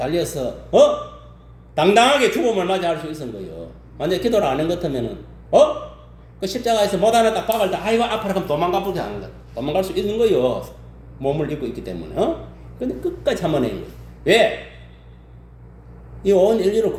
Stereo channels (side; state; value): both; identical; correlation 1.00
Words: 당당하게 죽음을 맞이할 수 있었던 거예요. 만약에 기도를 안 한 것 같으면은 그 십자가에서 못 하나 딱 박을 때 아이고 아파라 하면 도망가버리게 하는 거야. 도망갈 수 있는 거예요. 몸을 입고 있기 때문에. 근데 끝까지 참아낸 거예요. 왜? 이 온 인류를